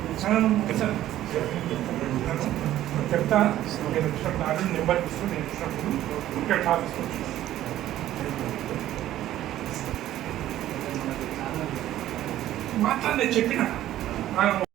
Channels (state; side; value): quieter; left; 13.3 dB